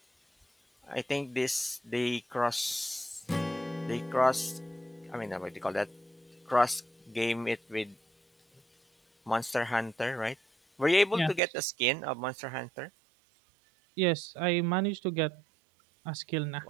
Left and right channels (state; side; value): drops out; left; at 11.4 s